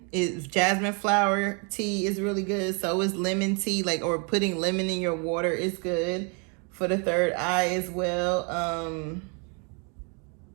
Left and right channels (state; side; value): quieter; left; 35.3 dB